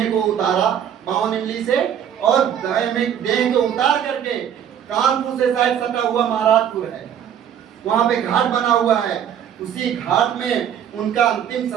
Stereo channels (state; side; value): quieter; left; 9.2 dB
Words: को उतारा 52 इमली से, और देह को उतार करके कानपुर से शायद सटा हुआ महाराजपुर है, वहां पे घाट बना हुआ है, उसी घाट में उनका अंतिम